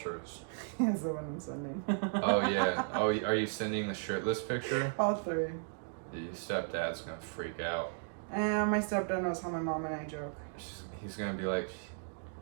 Here's the one I'm sending. Oh yeah. Oh, are you sending the shirtless picture? All three. Your stepdad's gonna freak out. And my stepdad knows how my mom and I joke. He's gonna be like,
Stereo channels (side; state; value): left; silent; digital silence